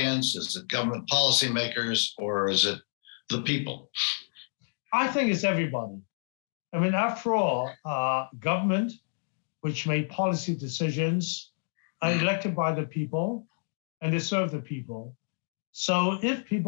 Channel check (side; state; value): right; silent; digital silence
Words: Is it government policymakers, or is it the people? I think it's everybody. I mean, after all, government, which made policy decisions, are elected by the people, and they serve the people. So if